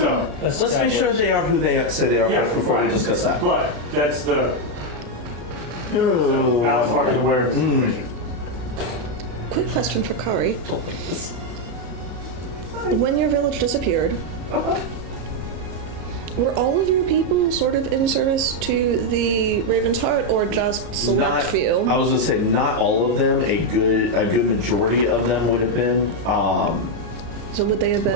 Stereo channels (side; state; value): left; late; 34 ms